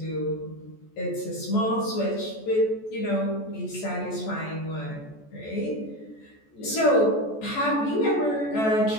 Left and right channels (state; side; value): late; right; 14 ms